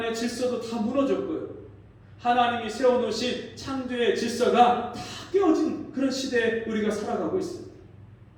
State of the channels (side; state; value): both; identical; correlation 1.00